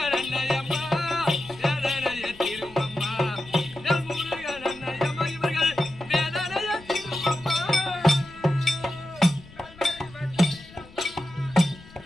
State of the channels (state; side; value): noise; left; rumble, 21 dB below the sound